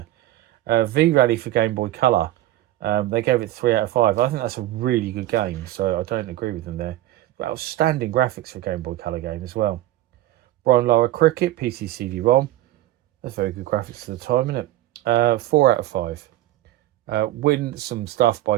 V-Rally for Game Boy Color. They gave it 3 out of 5. I think that's a really good game, so I don't agree with them there. But outstanding graphics for a Game Boy Color game as well. Brian Lara Cricket, PC CD-ROM. That's very good graphics for the time, isn't it? 4 out of 5. Win some stuff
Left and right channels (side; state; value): left; quieter; 15.0 dB